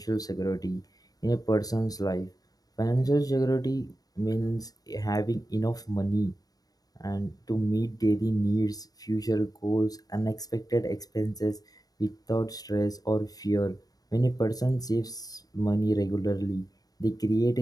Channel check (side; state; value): right; late; 0.18 ms